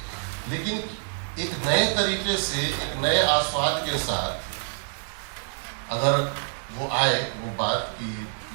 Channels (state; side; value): silent; left; digital silence